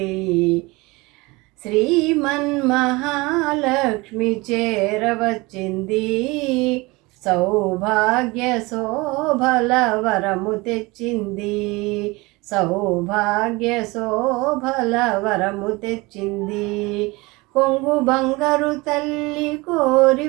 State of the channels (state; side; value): quieter; left; 23.6 dB